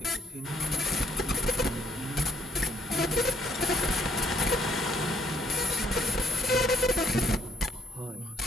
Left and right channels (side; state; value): both; normal; correlation 0.72